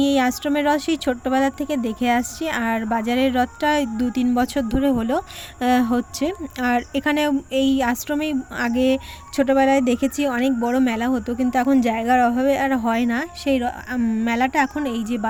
এই আশ্রমের রথ সেই ছোট্টবেলার থেকে দেখে আসছি, আর বাজারের রথটা 2-3 বছর ধরে হচ্ছে। আর এখানে এই আশ্রমেই আগে ছোটোবেলায় দেখেছি অনেক বড় মেলা হতো, কিন্তু এখন জায়গার অভাবে আর হয় না। সেই মেলাটা এখন এই যে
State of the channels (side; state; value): both; identical; correlation 1.00